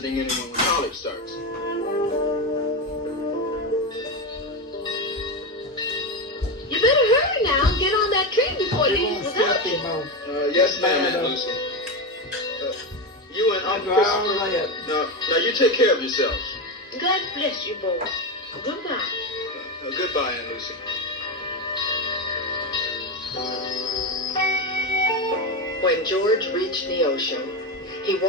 anyone when college starts. You better hurry now. Get on that train before it leaves without you. Yes, ma'am, Aunt Lucy. You and Uncle Christopher. Now you take care of yourselves. God bless you, boy. Goodbye. Goodbye, Aunt Lucy. When George reached Neosho, he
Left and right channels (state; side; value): normal; both; correlation 0.14